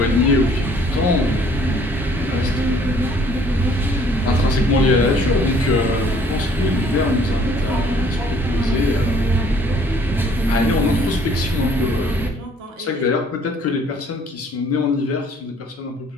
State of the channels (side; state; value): both; normal; correlation 0.59